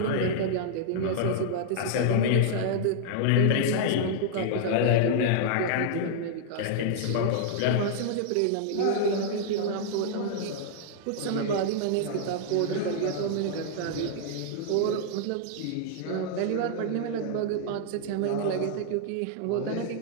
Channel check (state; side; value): different; both; correlation -0.01